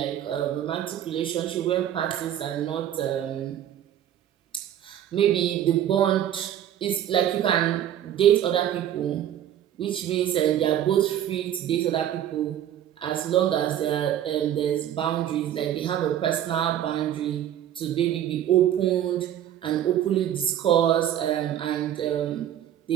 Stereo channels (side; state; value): left; quieter; 11.0 dB